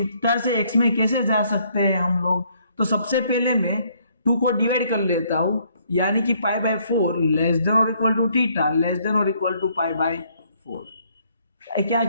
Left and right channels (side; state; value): both; inverted; correlation -0.67